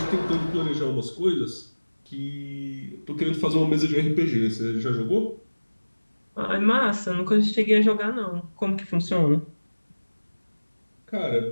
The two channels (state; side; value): inverted; both; correlation -1.00